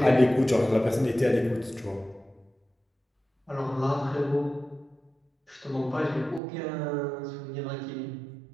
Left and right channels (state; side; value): drops out; left; at 6.4 s